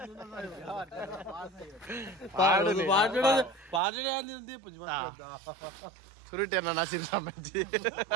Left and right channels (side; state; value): left; drops out; at 3.8 s